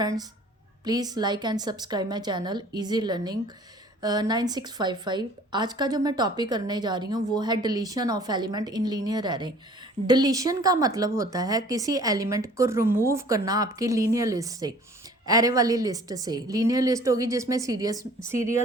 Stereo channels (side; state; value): both; normal; correlation 0.51